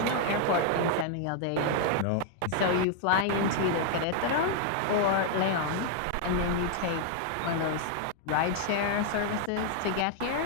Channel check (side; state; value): both; different; correlation 0.00